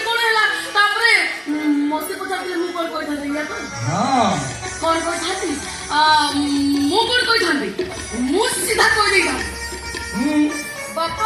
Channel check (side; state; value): both; identical; correlation 1.00